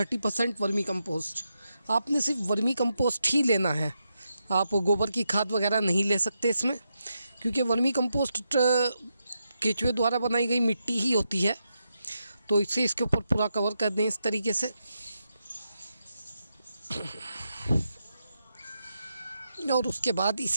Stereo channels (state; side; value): inverted; both; correlation -0.85